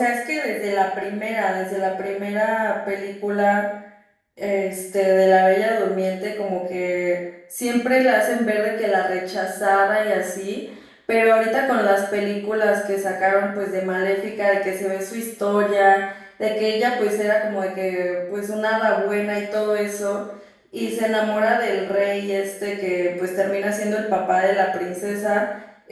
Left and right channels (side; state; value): both; identical; correlation 1.00